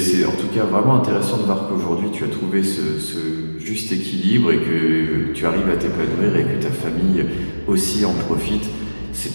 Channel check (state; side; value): inverted; both; correlation -1.00